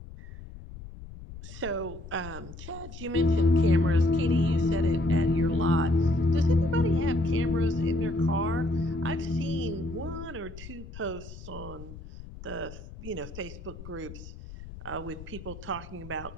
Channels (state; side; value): noise; left; rumble, 14 dB below the sound